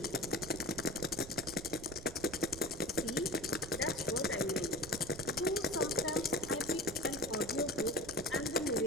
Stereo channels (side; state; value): right; noise; rumble, 14 dB below the sound